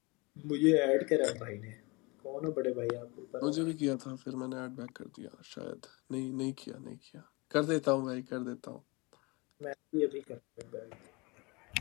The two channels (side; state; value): right; quieter; 26.7 dB